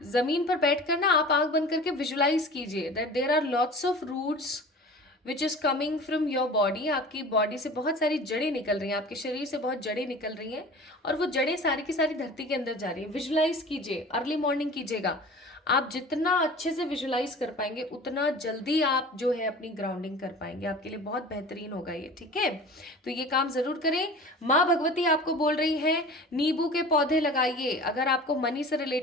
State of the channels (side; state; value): both; normal; correlation 0.39